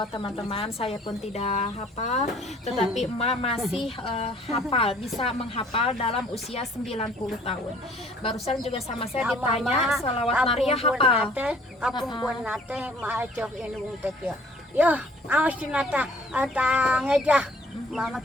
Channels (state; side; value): normal; both; correlation 0.56